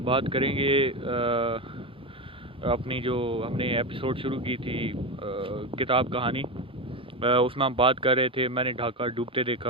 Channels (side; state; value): both; normal; correlation 0.16